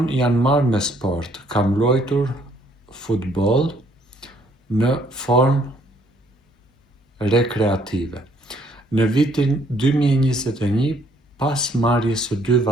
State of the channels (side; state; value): both; normal; correlation 0.65